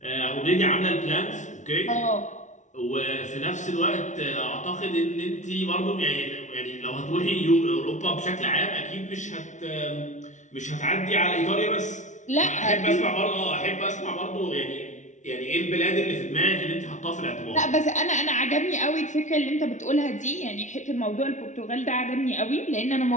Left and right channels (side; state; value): right; late; 0.36 ms